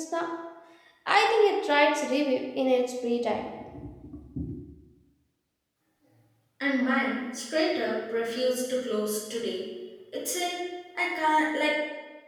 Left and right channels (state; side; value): identical; both; correlation 1.00